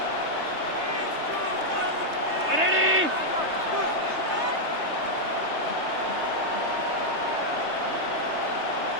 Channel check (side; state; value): left; late; 3.3 ms